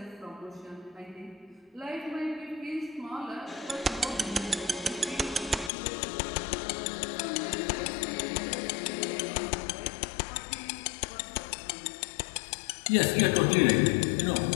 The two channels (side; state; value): right; drops out; at 5.7 s